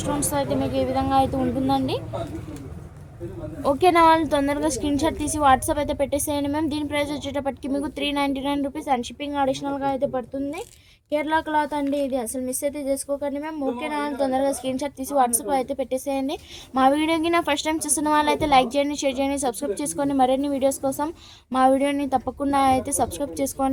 మీకు ఈ విధంగా అయితే ఉంటుందండి. ఓకేనా, వాళ్ళు తొందరగా స్క్రీన్ షాట్ తీసి వాట్సాప్ అయితే పెట్టేసేయండి మ్యామ్. దీని ప్రైస్ వచ్చేటప్పటికి మీకు 399 రూపీస్ అండ్ షిప్పింగ్ అడిషనల్గా అయితే పడుతుంది. కేరళ క్లాత్ అండి. ఇది అసలు మిస్ అయితే చేసుకోకండి మ్యామ్. ఓకేనా, వాళ్ళు తొందరగా స్క్రీన్ షాట్ తీసి వాట్సాప్ అయితే పెట్టేసేయండి. మా వీడియోకి నా ఫస్ట్ టైం చూస్తున్న వాళ్ళైతే లైక్ చేయండి, షేర్ చేయండి, సబ్స్క్రైబ్ చేసుకోండి. మరిన్ని వీడియోస్ కోసం మా వీడియోని తప్పకుండా అయితే సబ్స్క్రైబ్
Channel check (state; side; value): identical; both; correlation 1.00